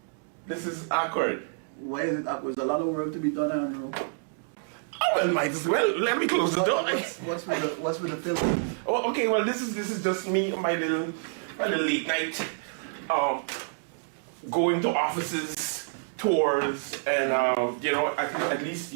This is awkward. Why is it awkward? There's a lot of work to be done, Andrew. Oh, well, might as well. Let me close the door. What's with the film? Oh, okay. Well, this is just me, my little late night, going to offices, tours, and at least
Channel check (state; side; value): silent; left; digital silence